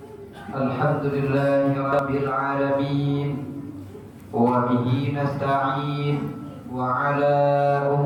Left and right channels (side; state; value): both; identical; correlation 1.00